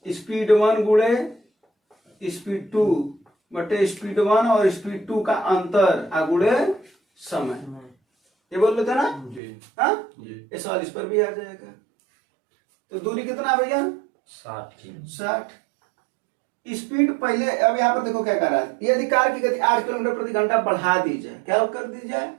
स्पीड 1 गुणे स्पीड 2 बटे स्पीड 1 और स्पीड 2 का अंतर गुणे समय, ये बोल रहे थे ना, हाँ ये सवाल इस पर भी आ जाएगा। तो दूरी कितना भैया 60। स्पीड पहले, अब यहाँ पर देखो क्या कर रहा है, यदि कार की गति 8 किलोमीटर प्रति घंटा बढ़ा दी जाए, क्या कर दी जाए,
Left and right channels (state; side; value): drops out; left; at 9.4 s